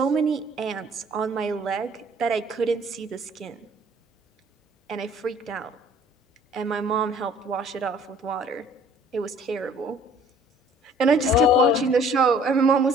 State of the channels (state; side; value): normal; both; correlation 0.55